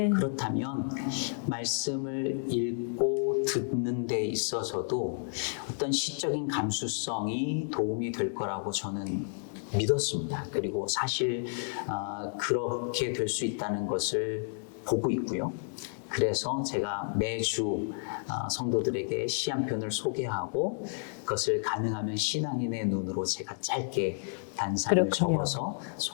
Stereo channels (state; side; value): silent; right; digital silence